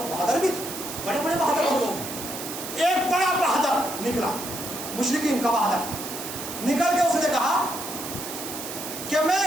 بہادر بھی تھے، بڑے بڑے بہادر لوگ. ایک بڑا بہادر نکلا، مشرکین کا بہادر نکل کے اس نے کہا کہ میں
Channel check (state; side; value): noise; right; hiss, 8 dB below the sound